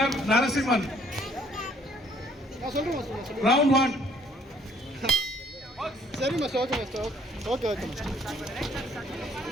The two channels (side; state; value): both; normal; correlation 0.62